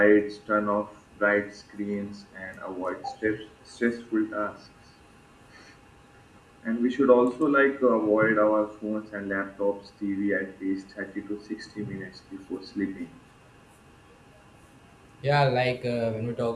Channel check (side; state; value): both; identical; correlation 1.00